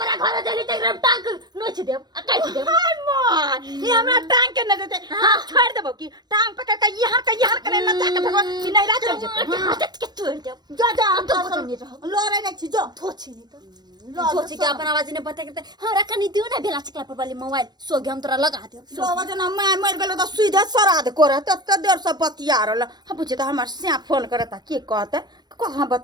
घर देली त एकदम टांग नोच देब काट देब। हाय मां ये हमरा टांग के न देते हां छोड़ देबो की टांग पकड़ के यहाँ करे न ताके भगवान की नहीं रात चल जेते के छोड़ देब। जा लोरे नहीं छी जो थोची नहीं तो सोची के अपन आवाज ने बता के हमरा कनी दियो ना बेला चकला पर वाली मोबाइल सोगे हम तोरा लगा देब। लोग जना मैं मर गेलो तो सीधे श्राद्ध करे तत देर से बतिया रहल। हम पूछे तो हमर सिया फोन करता के कहते कहां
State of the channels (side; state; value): left; late; 0.20 ms